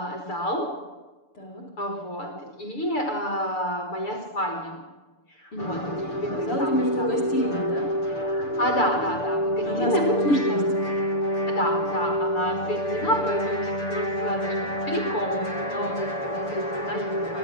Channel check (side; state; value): right; late; 6.9 ms